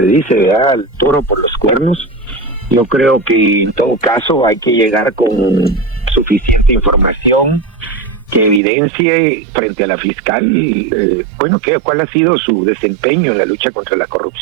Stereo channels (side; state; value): left; drops out; at 8.6 s